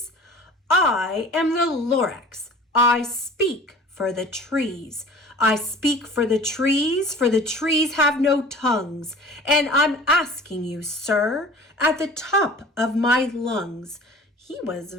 "I am the Lorax. I speak for the trees. I speak for the trees have no tongues, and I'm asking you, sir, at the top of my lungs." He was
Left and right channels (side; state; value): both; normal; correlation 0.44